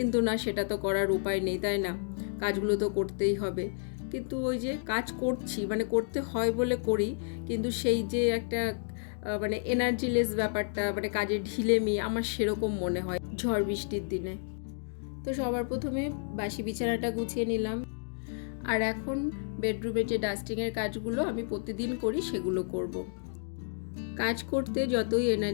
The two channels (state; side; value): silent; right; digital silence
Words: না, সেটা তো করার উপায় নেই, তাই না? কাজগুলো তো করতেই হবে। কিন্তু ওই যে কাজ করছি, মানে করতে হয় বলে করি, কিন্তু সেই যে একটা মানে এনার্জিলেস ব্যাপারটা, মানে কাজের ঢিলেমি আমার সেরকম মনে হয় ঝড় বৃষ্টির দিনে। তো সবার প্রথমে বাসি বিছানাটা গুছিয়ে নিলাম। আর এখন বেডরুমের যে ডাস্টিংয়ের কাজগুলো আমি প্রতিদিন করি সেগুলো করব। কাজ করতে যতই